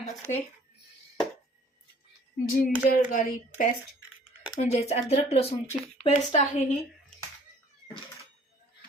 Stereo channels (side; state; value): both; normal; correlation 0.56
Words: असते. जिंजर गार्लिक पेस्ट, म्हणजेच अद्रक लसूणची पेस्ट आहे ही